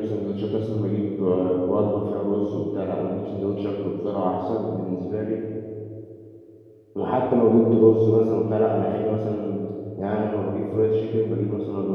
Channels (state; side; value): identical; both; correlation 1.00